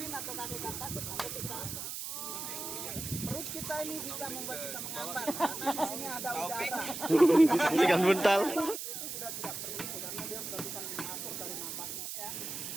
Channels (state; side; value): noise; right; hiss, 6 dB below the sound